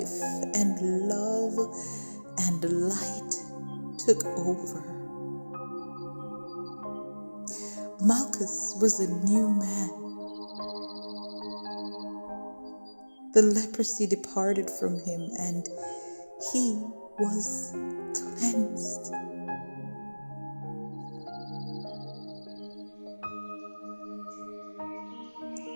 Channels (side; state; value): both; inverted; correlation -1.00